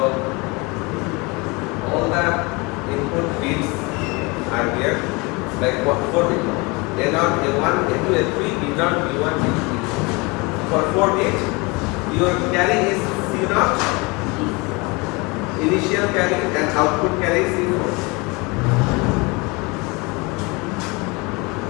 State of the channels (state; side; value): quieter; right; 26.9 dB